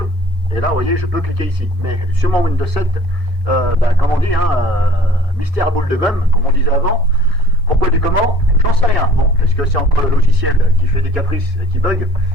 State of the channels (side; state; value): both; normal; correlation 0.50